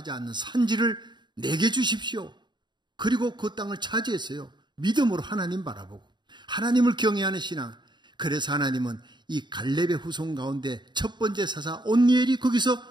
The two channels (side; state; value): left; late; 0.22 ms